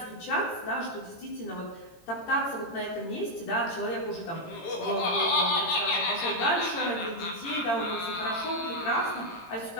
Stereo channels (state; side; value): late; right; 18 ms